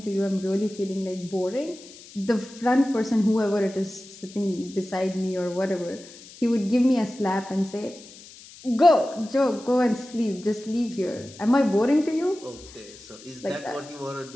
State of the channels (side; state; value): left; noise; hiss, 19 dB below the sound